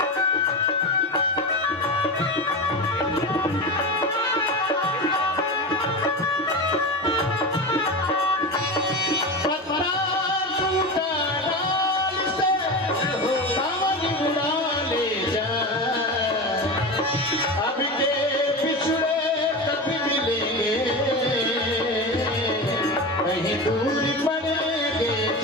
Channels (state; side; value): normal; both; correlation 0.24